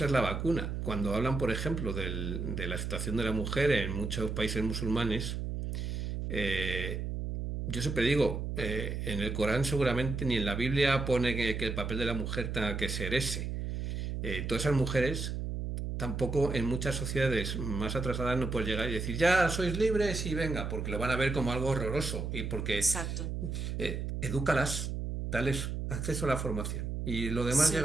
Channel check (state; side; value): noise; right; hum, 3 dB below the sound